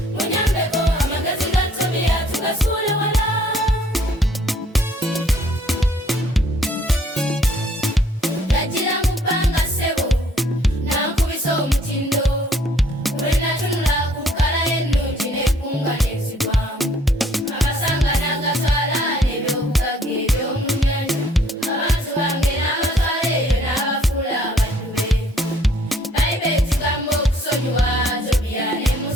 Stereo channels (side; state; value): both; normal; correlation 0.61